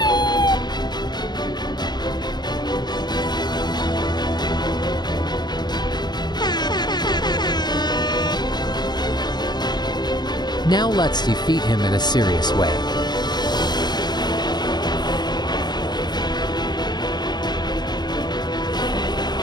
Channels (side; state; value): right; late; 0.21 ms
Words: Now let's defeat him in a serious way.